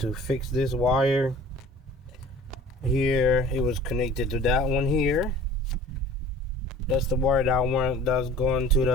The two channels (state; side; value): normal; both; correlation 0.46